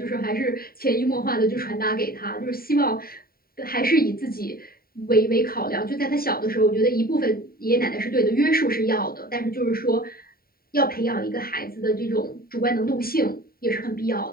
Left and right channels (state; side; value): late; right; 0.43 ms